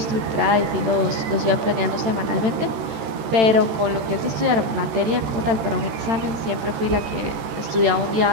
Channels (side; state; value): left; late; 13 ms